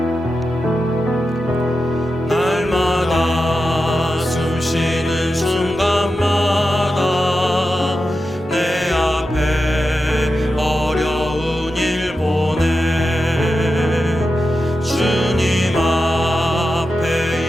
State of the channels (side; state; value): both; normal; correlation 0.90